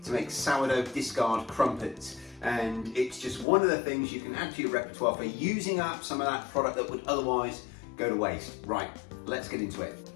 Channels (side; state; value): right; drops out; at 3.5 s